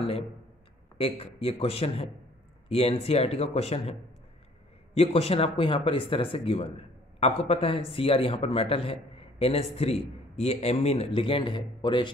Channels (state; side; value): normal; both; correlation 0.57